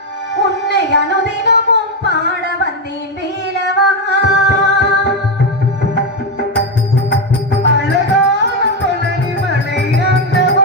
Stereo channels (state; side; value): normal; both; correlation 0.08